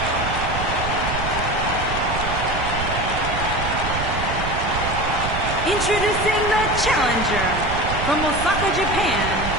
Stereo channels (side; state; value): right; noise; rumble, 5 dB below the sound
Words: Introducing the challenger from Osaka, Japan,